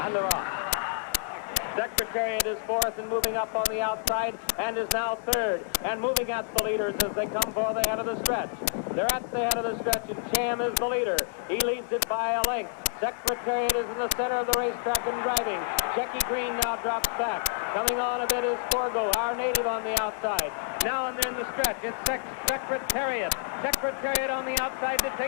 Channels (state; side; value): silent; right; digital silence